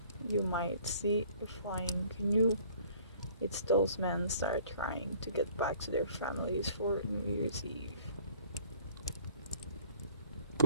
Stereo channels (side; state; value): both; inverted; correlation -0.56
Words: you might see a flying canoe. It's those men start trying to get back to their families for New Year's Eve.